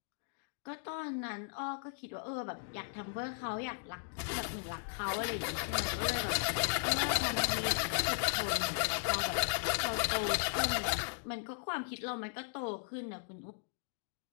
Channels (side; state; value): right; silent; digital silence